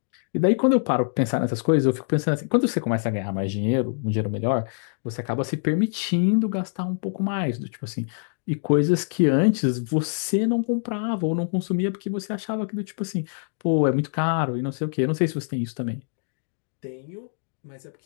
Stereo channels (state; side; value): silent; right; digital silence